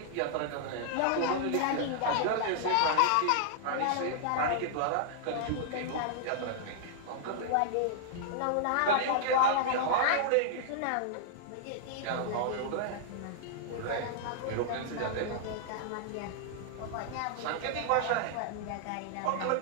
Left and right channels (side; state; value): both; different; correlation -0.01